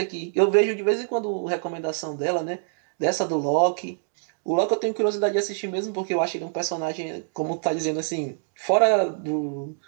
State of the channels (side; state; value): left; silent; digital silence